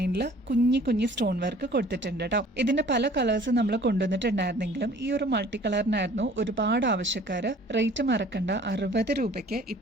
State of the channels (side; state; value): both; normal; correlation 0.51